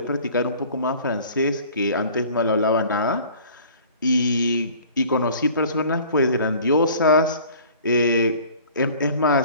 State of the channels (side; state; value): both; inverted; correlation -0.48